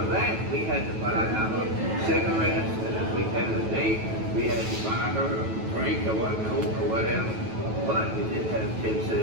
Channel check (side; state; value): left; late; 9.2 ms